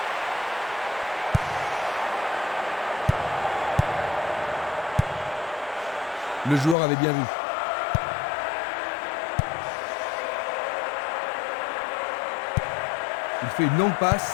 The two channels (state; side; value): drops out; right; at 6.8 s